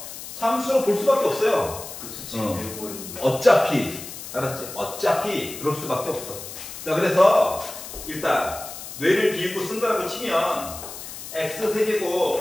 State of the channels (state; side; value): noise; left; hiss, 11 dB below the sound